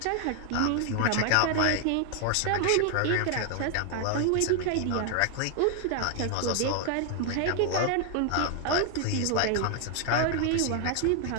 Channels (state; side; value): different; both; correlation 0.00